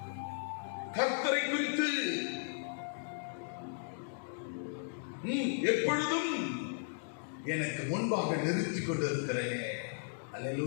கர்த்தரை குறித்து எப்பொழுதும் எனக்கு முன்பாக நிறுத்திக் கொண்டிருக்கிறேன்.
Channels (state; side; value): silent; right; digital silence